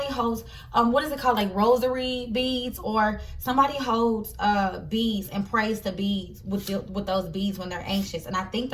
holds, what is it called? Like rosary beads, or somebody holds beads and prays to beads with those beads when they're anxious. And I think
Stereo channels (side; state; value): both; identical; correlation 1.00